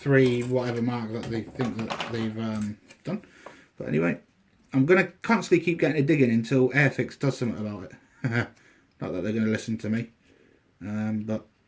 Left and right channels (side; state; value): both; identical; correlation 1.00